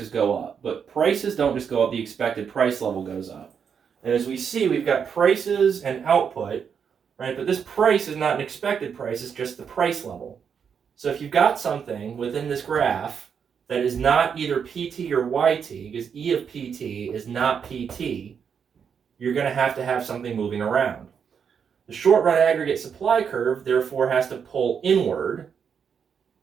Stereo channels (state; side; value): quieter; left; 7.0 dB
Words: go up. But prices don't just go up, the expected price level goes up. And as we see, we've got prices and output, right? But this price is not an expected price, it's just the price level. So if you've got something within this graph that is not either PT or YT, because E of PT is not PT, you're going to have something moving around. The short run aggregate supply curve, therefore, has to pull inward